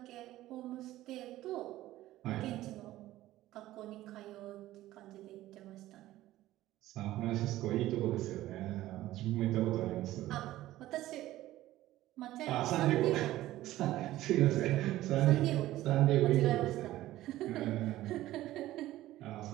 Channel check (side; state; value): left; quieter; 15.4 dB